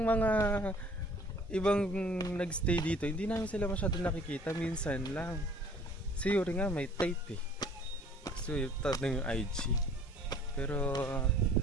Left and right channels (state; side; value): normal; both; correlation 0.54